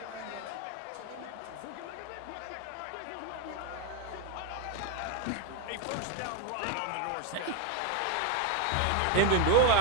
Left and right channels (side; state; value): both; different; correlation 0.01